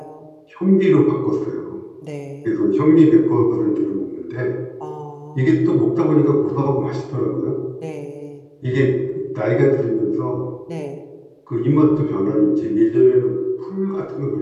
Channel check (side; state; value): both; identical; correlation 1.00